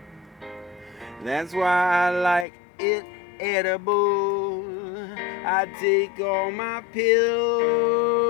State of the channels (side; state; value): right; drops out; at 2.5 s